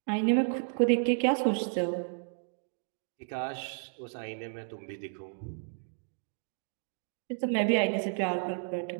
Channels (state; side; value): silent; left; digital silence